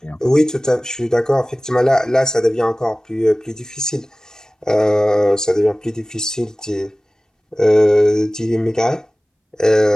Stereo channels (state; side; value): normal; both; correlation 0.98